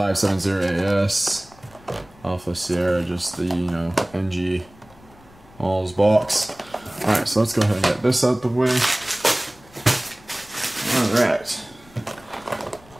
Alpha Sierra, just the, you know, NG All's box. Alright, so let's go ahead and get this out the way. Alright.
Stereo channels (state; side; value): noise; left; rumble, 25 dB below the sound